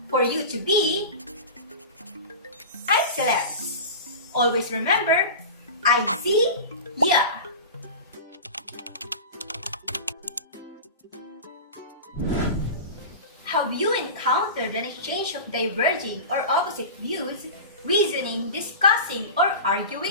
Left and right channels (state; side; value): inverted; both; correlation -0.30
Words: for you to be excellent. Always remember, Izzy, yeah. Have you encountered an exchange of diverging or opposite views, reasoning, discussing, or